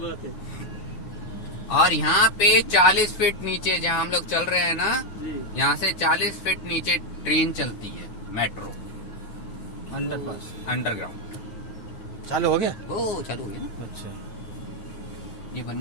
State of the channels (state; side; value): late; right; 9.4 ms